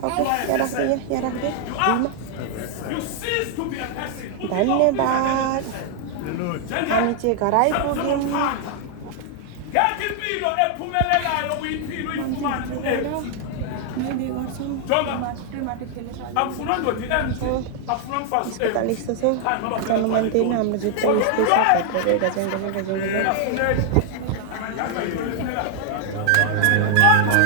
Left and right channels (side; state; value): both; different; correlation 0.00